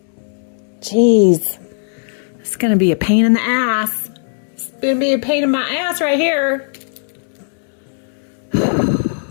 Jeez. It's going to be a pain in the ass. It's going to be a pain in my ass right here.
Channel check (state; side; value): silent; right; digital silence